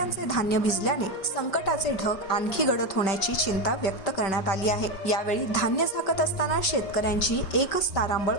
धान्य भिजले, संकटाचे ढग आणखी गडद होण्याची चिंता व्यक्त करण्यात आली आहे। यावेळी धान्य झाकत असताना शेतकऱ्यांची एकच तारांबळ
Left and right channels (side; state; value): right; late; 5.2 ms